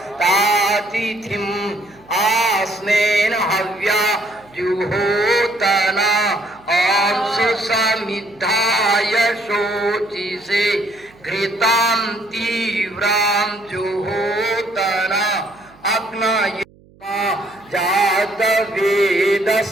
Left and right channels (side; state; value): right; noise; hum, 28 dB below the sound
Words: तातिथिम आस्नेन हव्या जुहोतना अंशु समिद्धाय शोचिसे घृतां तीव्रां जुहोतना अग्नये जात